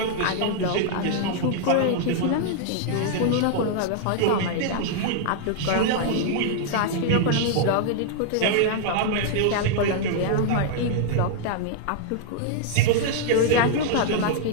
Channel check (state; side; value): different; both; correlation 0.00